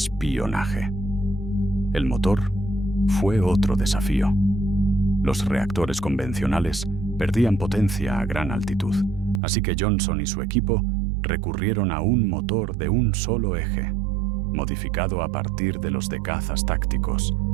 El motor fue otro desafío. Los reactores convencionales perdían potencia a gran altitud, así que Johnson y su equipo recurrieron a un motor de un solo eje, modificado a partir de los de cazas tácticos,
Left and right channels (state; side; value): drops out; left; at 9.4 s